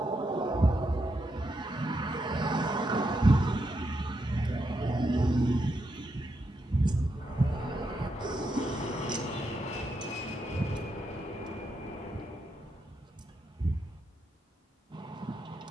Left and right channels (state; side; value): normal; both; correlation 0.82